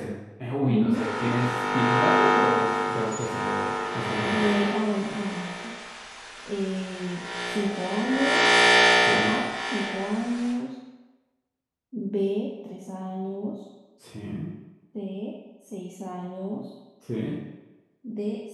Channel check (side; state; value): both; identical; correlation 1.00